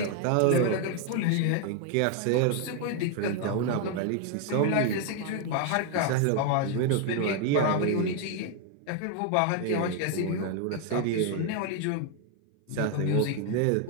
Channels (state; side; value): different; both; correlation 0.01